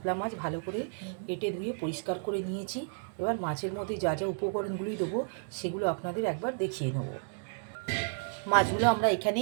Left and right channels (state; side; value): silent; left; digital silence